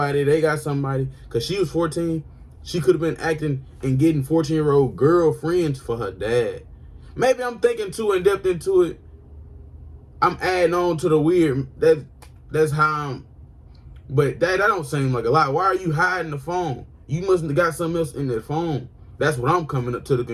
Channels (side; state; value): both; identical; correlation 1.00